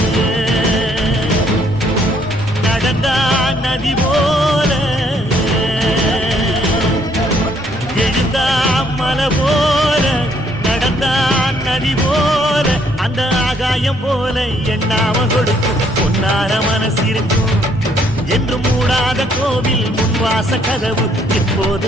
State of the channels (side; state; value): both; normal; correlation 0.67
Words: போல எண்ணாம கொடுக்கும் பொன்னார மனசு இருக்கும் என்று மூடாத கோவில் முன்வாச கதவு